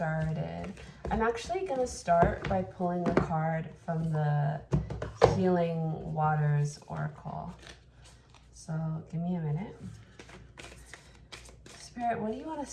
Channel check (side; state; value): both; identical; correlation 1.00